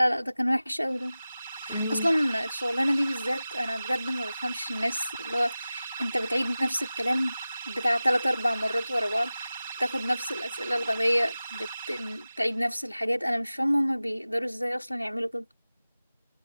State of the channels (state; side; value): inverted; both; correlation -0.96